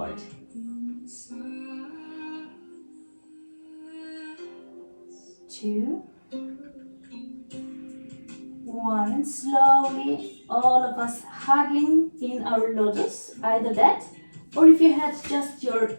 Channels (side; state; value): both; inverted; correlation -1.00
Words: 2, 1, and slowly all of us hugging in our lotus, either that, or if you had just your